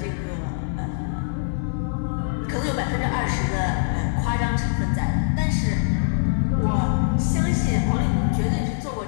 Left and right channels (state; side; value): silent; right; digital silence